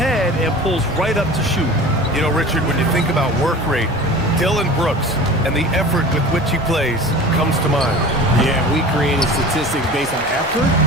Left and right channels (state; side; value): normal; both; correlation 0.38